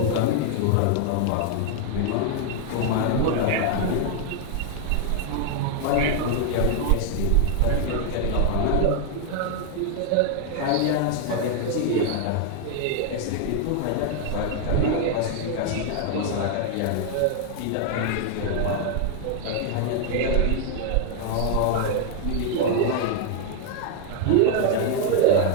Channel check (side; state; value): both; different; correlation 0.00